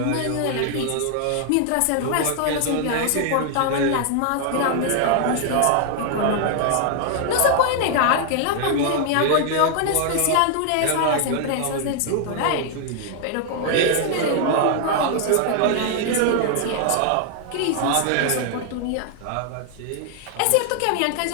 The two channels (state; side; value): different; both; correlation 0.00